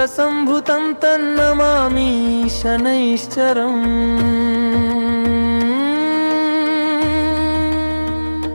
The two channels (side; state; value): both; inverted; correlation -1.00